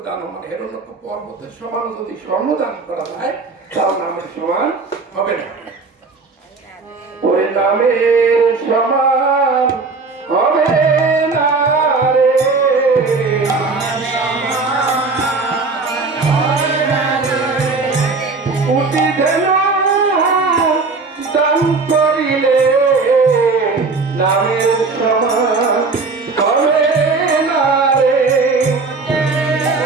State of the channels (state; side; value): quieter; left; 4.1 dB